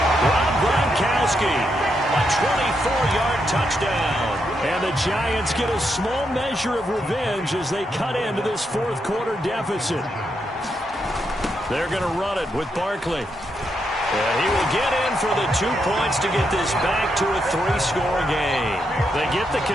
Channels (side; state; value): both; normal; correlation 0.81